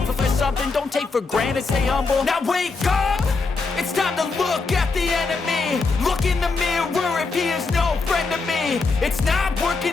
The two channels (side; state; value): right; quieter; 4.1 dB